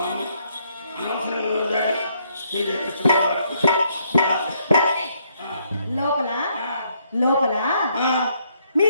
లోపల లోపల మీ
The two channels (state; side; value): inverted; both; correlation -0.71